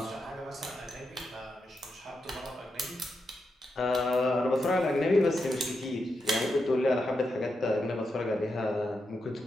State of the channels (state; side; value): normal; both; correlation 0.85